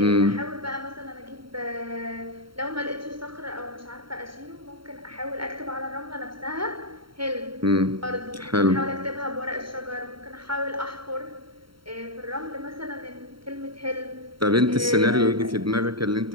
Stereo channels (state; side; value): late; left; 0.73 ms